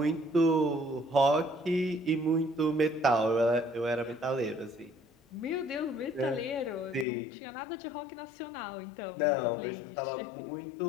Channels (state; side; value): drops out; right; at 7.1 s